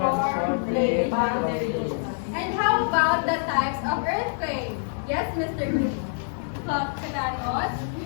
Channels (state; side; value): silent; right; digital silence